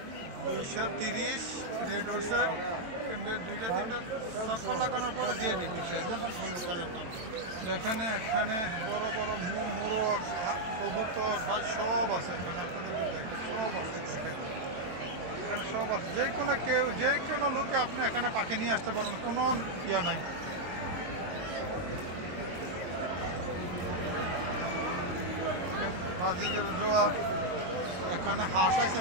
230 রেড উঠছে এমনি দুইটা তিনটা সফল লাগানোর পরে দিয়ে দিচ্ছে এখানে এখানে বড় বড় মোরগ কবুতর ভাই সব আছে এখানে আপনাদের দেখেন সব আছে এখানে সব আছে যে কোনো লোকে আপনি এখানে পাখি নিয়ে আসতে পারেন কোনো ইয়া নাই বাজিগের জোয়া এখানে হাঁস আছে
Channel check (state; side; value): late; left; 22 ms